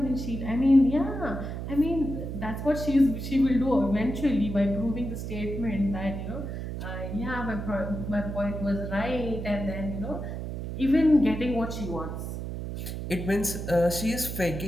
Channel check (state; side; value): noise; right; hum, 6 dB below the sound